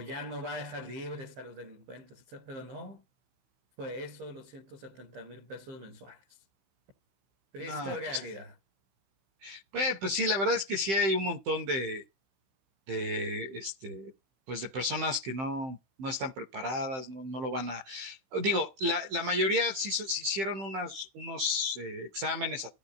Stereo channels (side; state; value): left; late; 15 ms